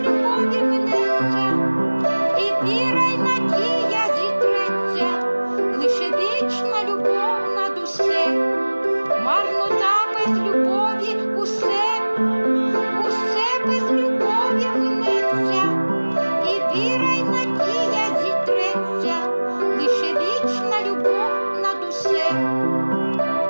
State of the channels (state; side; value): inverted; both; correlation -1.00